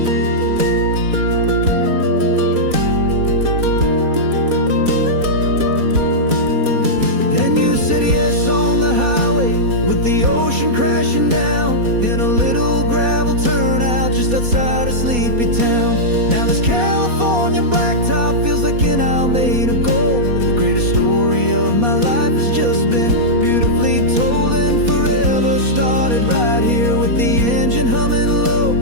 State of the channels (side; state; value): left; late; 4.2 ms